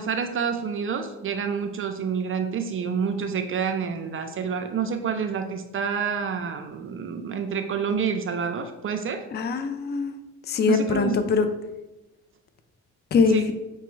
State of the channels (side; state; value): both; normal; correlation 0.28